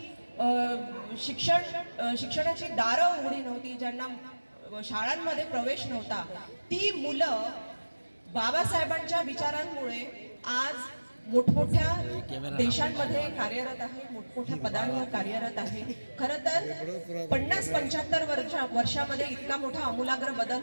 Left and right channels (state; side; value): inverted; both; correlation -1.00